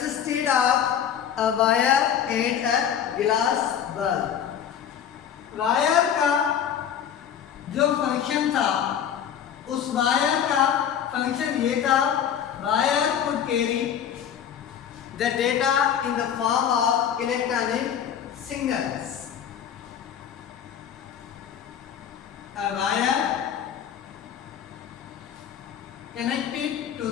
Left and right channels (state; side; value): quieter; right; 8.9 dB